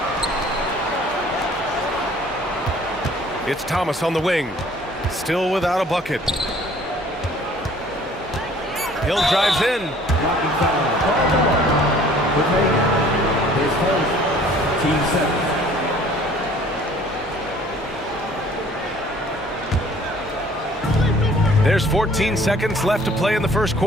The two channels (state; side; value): normal; both; correlation 0.54